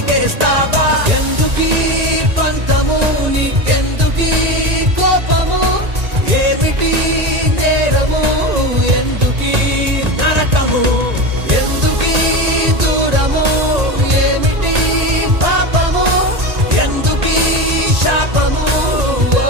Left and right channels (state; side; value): late; left; 1.9 ms